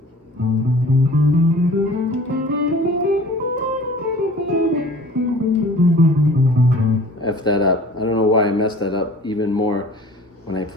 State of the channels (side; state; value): both; normal; correlation 0.45